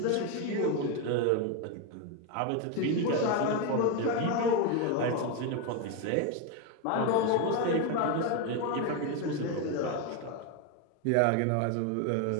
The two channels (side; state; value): both; different; correlation 0.02